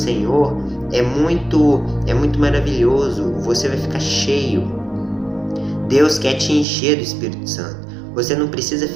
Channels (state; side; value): drops out; left; at 6.7 s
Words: é muito maravilhoso. Você vai ficar cheio. Deus quer te encher do Espírito Santo. Você não precisa